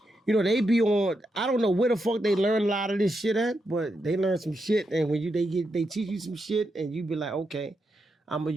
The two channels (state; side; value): normal; both; correlation 0.84